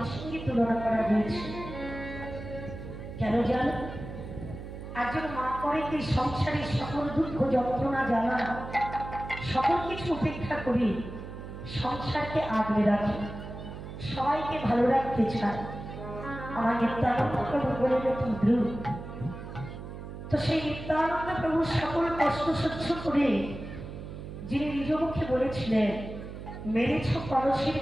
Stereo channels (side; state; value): right; noise; hum, 10 dB below the sound